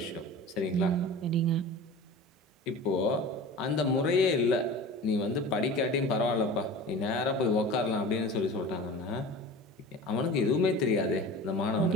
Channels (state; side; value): normal; both; correlation 0.36